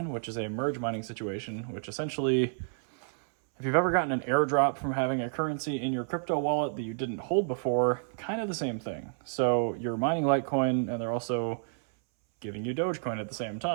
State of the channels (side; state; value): left; silent; 58 dB below the other